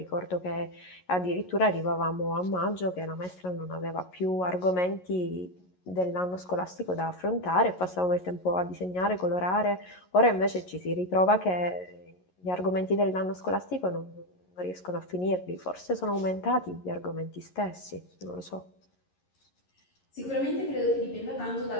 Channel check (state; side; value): late; right; 11 ms